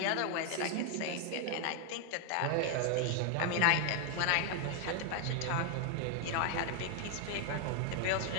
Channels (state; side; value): different; both; correlation 0.00